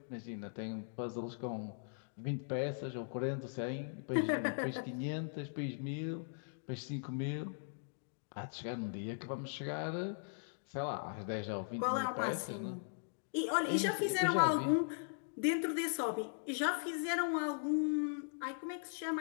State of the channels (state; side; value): silent; right; digital silence